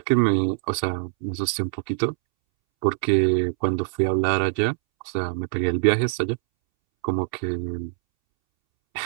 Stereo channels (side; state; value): left; silent; 63 dB below the other